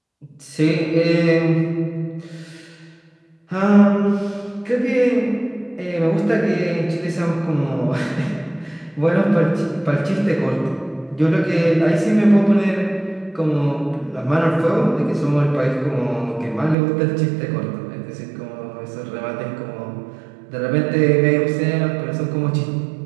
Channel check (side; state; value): left; drops out; at 16.8 s